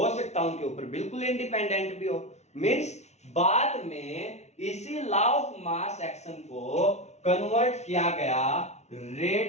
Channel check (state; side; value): late; right; 0.32 ms